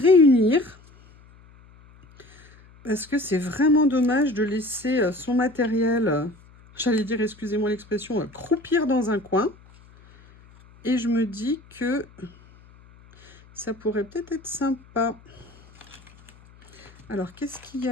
Parce que c'est vraiment dommage de laisser son matériel, j'allais dire, excusez-moi l'expression, croupir dans un coin. Et je me dis que ça pourrait peut-être être sympa. Alors, qu'est-ce qu'il y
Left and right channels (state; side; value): noise; left; hum, 25 dB below the sound